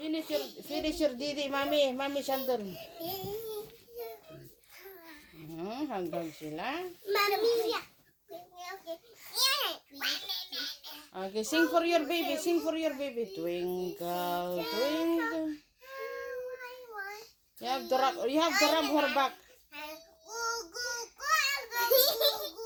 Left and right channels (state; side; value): identical; both; correlation 1.00